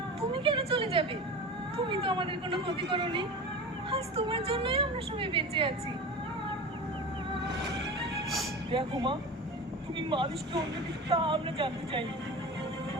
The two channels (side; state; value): both; normal; correlation 0.31